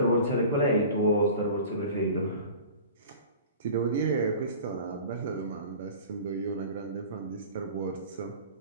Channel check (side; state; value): both; inverted; correlation -0.40